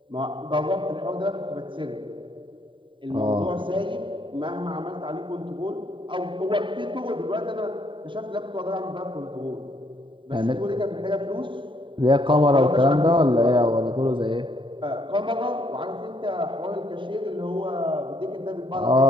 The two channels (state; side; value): late; left; 0.24 ms